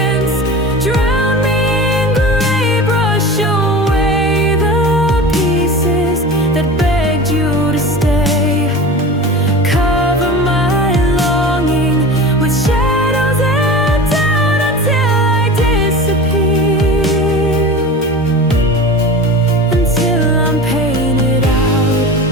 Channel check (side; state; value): both; normal; correlation 0.33